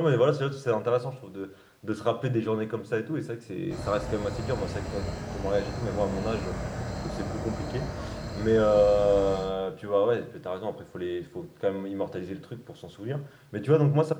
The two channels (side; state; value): both; identical; correlation 1.00